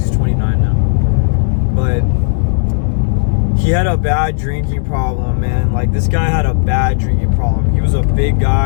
29 now. But he had a bad drinking problem, man. Like, this guy had a bad drinking problem. He was a big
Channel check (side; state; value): right; silent; digital silence